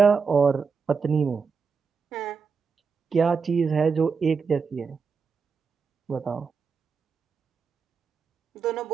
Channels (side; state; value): left; quieter; 5.5 dB